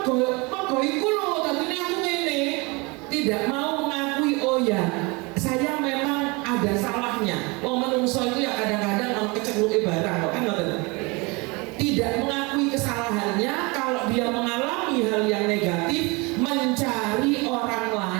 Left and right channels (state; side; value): quieter; left; 27.2 dB